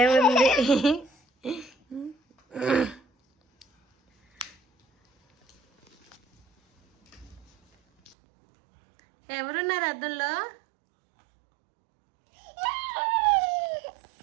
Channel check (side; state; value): left; drops out; at 8.2 s